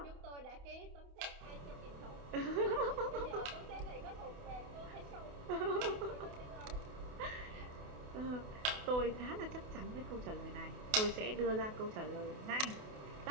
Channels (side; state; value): left; late; 28 ms